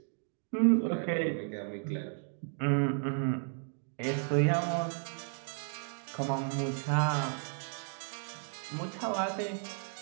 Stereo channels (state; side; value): silent; left; 55 dB below the other